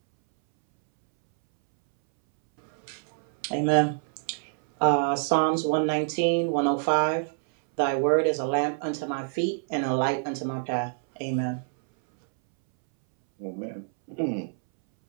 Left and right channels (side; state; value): left; silent; 61 dB below the other